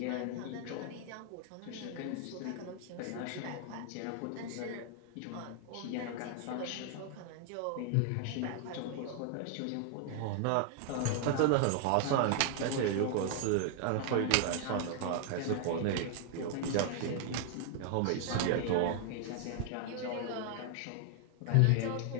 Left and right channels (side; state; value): both; different; correlation 0.00